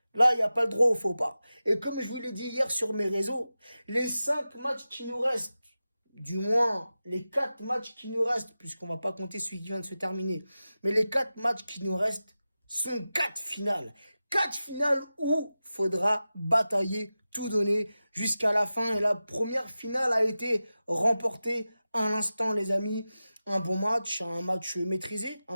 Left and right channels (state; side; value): inverted; both; correlation -0.94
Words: Là, il n'y a pas le droit au faux pas. Et comme je vous l'ai dit hier sur mes réseaux, les 5 matchs qui nous restent, du moins les 4 matchs qui nous restent, puisqu'on va pas compter celui qui vient de se terminer, mais les 4 matchs qui nous restent sont 4 finales. 4 finales où faudra batailler, tout donner jusqu'à la fin. Et la première finale a été remportée à l'instant, les amis. Un bon match, un match maîtrisé